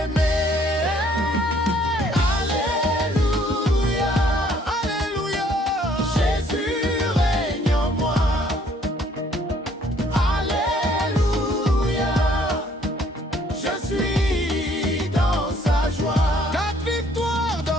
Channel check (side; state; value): both; normal; correlation 0.62